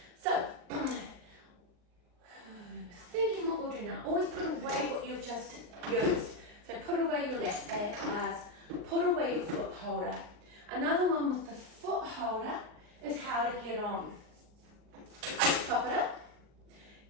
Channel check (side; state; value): left; late; 39 ms